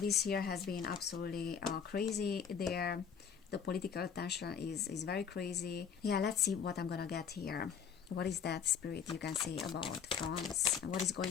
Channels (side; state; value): right; quieter; 7.2 dB